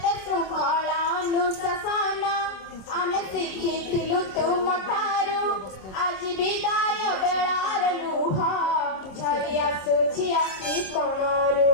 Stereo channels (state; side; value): late; right; 26 ms